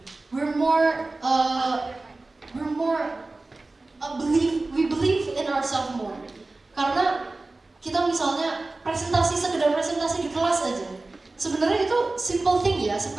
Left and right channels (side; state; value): left; quieter; 3.2 dB